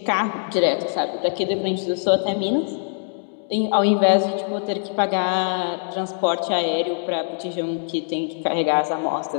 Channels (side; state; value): right; silent; digital silence